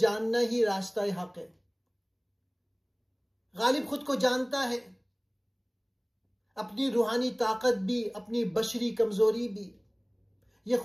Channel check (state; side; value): identical; both; correlation 1.00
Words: ہی راستہ حق ہے۔ غالب خود کو جانتا ہے، اپنی روحانی طاقت بھی، اپنی بشری کمزوری بھی۔ یہ